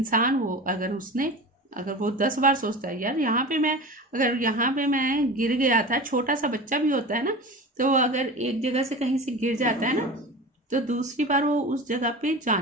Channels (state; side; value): normal; both; correlation 0.32